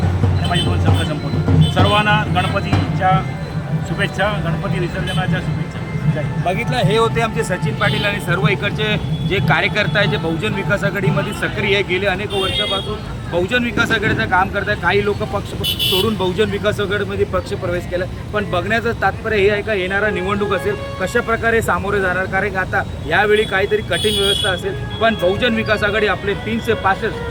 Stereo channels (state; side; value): identical; both; correlation 1.00